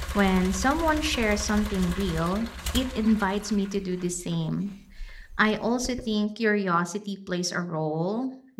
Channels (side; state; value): both; identical; correlation 1.00